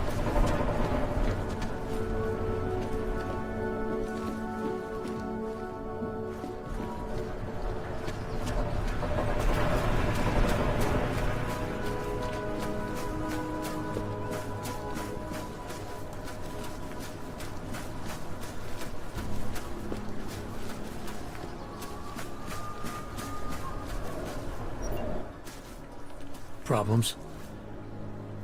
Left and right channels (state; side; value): identical; both; correlation 1.00